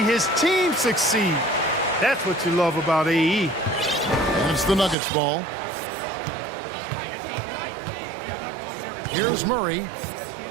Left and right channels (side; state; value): left; drops out; at 5.0 s